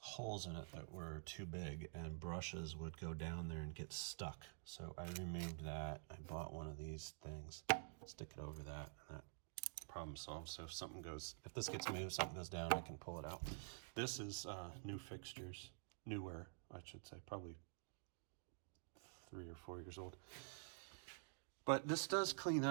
in it that were too big, and brushes would go down there and get stuck. So I removed that. I bought one of these things, stick it over that, and that problem solved. So if this gets moved, something goes down, I can pull it out. This is new fixtures, newer, I should say, probably 3 or 4 years old. But this does clean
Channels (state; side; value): silent; left; digital silence